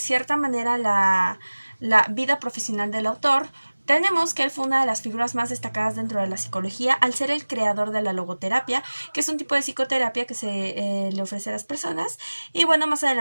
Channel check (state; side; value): inverted; both; correlation -1.00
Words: manera, la vida profesional del autor, tenemos que él fue una de las figuras más destacadas dentro de la psicología al ser el creador de la logoterapia, que es un tipo de psicoterapia que se le ofrece a las personas. Y bueno, más